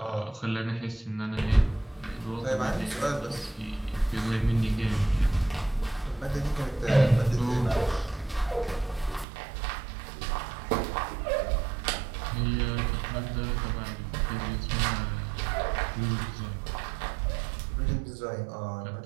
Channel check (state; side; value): drops out; left; at 9.2 s